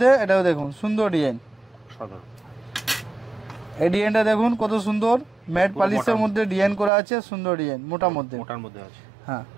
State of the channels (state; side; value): drops out; left; at 6.9 s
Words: এটাও দেখুন সুন্দর ডিজাইন। এই ডিজাইনটা দেখুন কত সুন্দর, ম্যাট পলিশের মধ্যে ডিজাইন করা আছে, সুন্দর ডিজাইন, মোটার মধ্যে। হ্যাঁ